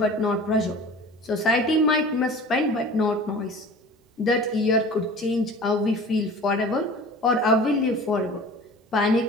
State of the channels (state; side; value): normal; both; correlation 0.41